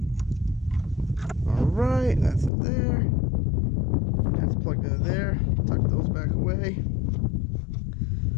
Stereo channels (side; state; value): right; drops out; at 2.5 s